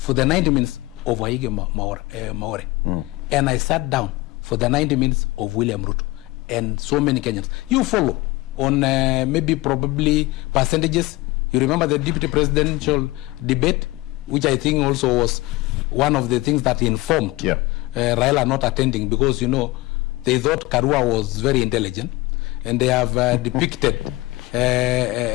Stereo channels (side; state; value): right; quieter; 20.5 dB